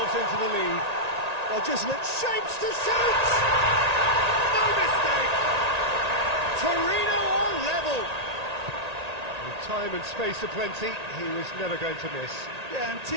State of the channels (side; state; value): left; late; 1.8 ms